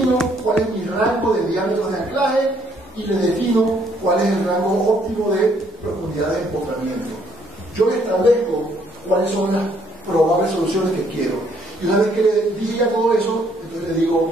cuál es mi rango de diámetros de anclaje y le defino cuál es el rango óptimo de profundidad de empotramiento. Yo le establezco cuáles son las probables soluciones que quiero. Y una vez que le dije ya todo eso, entonces le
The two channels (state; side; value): normal; both; correlation 0.67